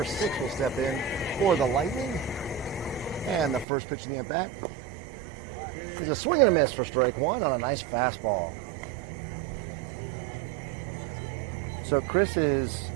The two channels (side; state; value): left; drops out; at 3.7 s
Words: 6 will step in for the Lightning. And the first pitch in the at-bat is a swing and a miss for strike 1 on a nice fastball. So Chris has